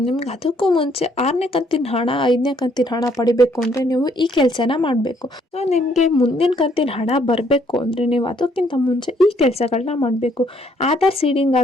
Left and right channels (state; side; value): normal; both; correlation 0.67